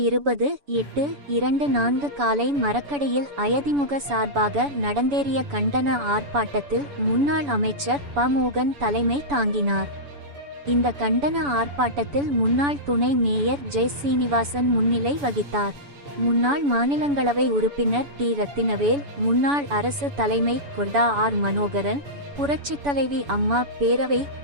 20/8/24 காலை மரக்கடையில் அயதிமுக சார்பாக நடந்தேறிய கண்டன ஆர்ப்பாட்டத்தில் முன்னாள் அமைச்சர் ப. மோகன் தலைமை தாங்கினார். இந்த கண்டன ஆர்ப்பாட்டத்தில் முன்னாள் துணை மேயர் ஜெய் சீனிவாசன் முன்னிலை வகித்தார். முன்னாள் மாநிலங்களவை உறுப்பினர் டி. ரத்தினவேல், முன்னாள் அரசு தலைமை கொர்டா ஆர். மனோகரன், புரட்சித் தலைவி அம்மா பேரவை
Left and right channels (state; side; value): late; left; 7.0 ms